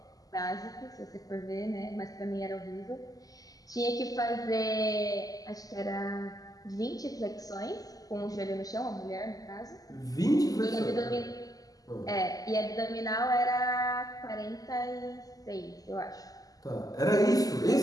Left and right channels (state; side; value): late; right; 0.17 ms